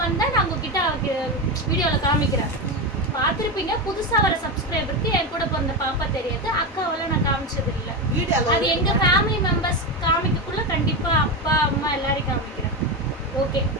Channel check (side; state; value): both; normal; correlation 0.15